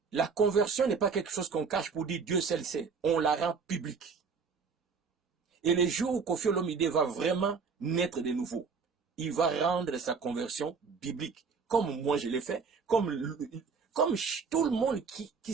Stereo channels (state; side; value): quieter; left; 5.3 dB